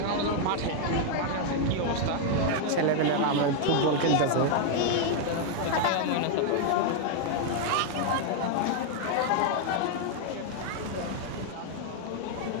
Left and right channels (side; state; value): both; different; correlation 0.00